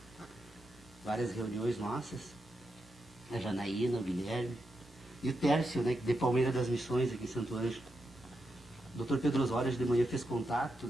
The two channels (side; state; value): both; normal; correlation 0.85